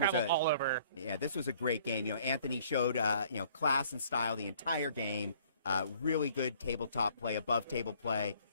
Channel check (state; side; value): inverted; both; correlation -0.58